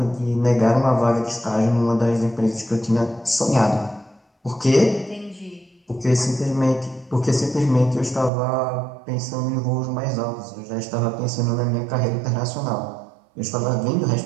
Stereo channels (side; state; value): left; drops out; at 8.3 s